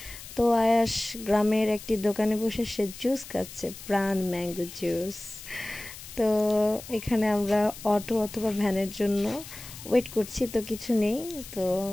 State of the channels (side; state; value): left; noise; hiss, 14 dB below the sound